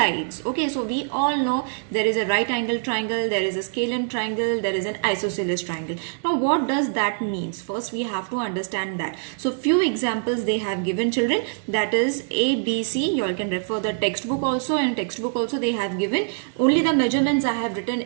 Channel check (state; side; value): silent; left; digital silence